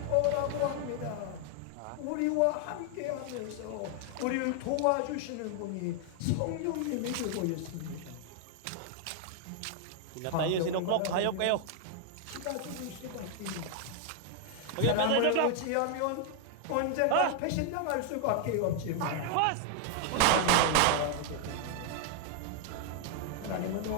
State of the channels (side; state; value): both; different; correlation 0.00